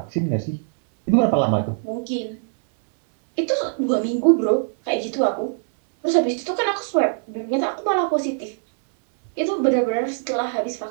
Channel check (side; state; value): left; silent; 64 dB below the other